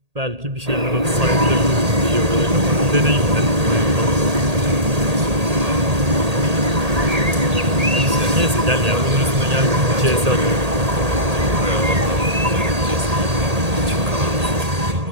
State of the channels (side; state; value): left; late; 1.8 ms